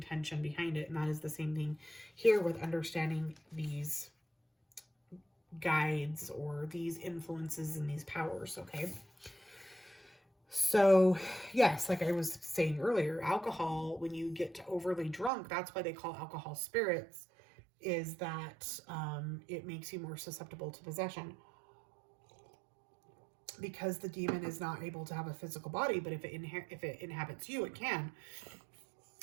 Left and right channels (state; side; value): drops out; left; at 15.3 s